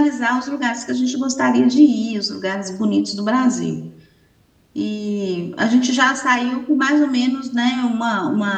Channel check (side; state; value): both; identical; correlation 1.00